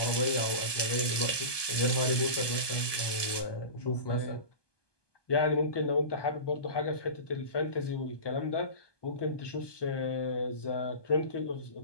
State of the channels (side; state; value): right; late; 1.2 ms